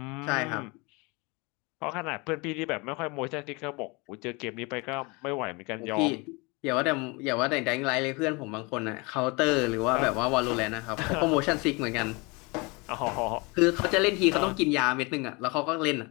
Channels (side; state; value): right; quieter; 27.5 dB